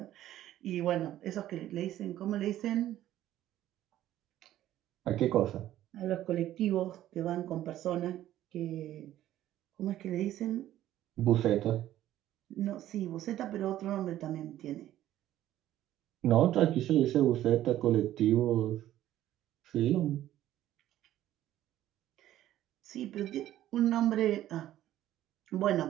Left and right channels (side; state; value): left; quieter; 13.2 dB